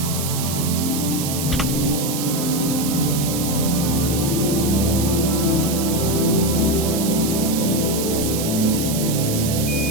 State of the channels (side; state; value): right; noise; hiss, 5 dB below the sound